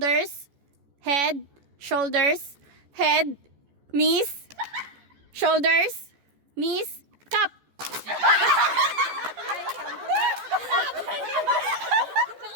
head, shoulders, head, knees, shoulders, knees, cup.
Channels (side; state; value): left; late; 14 ms